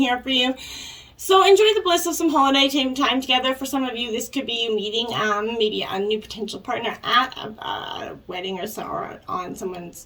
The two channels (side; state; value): both; identical; correlation 1.00